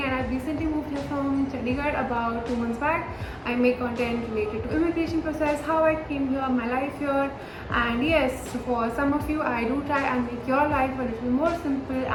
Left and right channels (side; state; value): both; identical; correlation 1.00